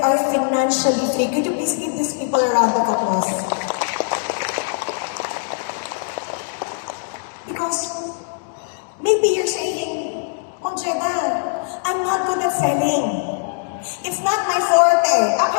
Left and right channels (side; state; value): right; silent; 65 dB below the other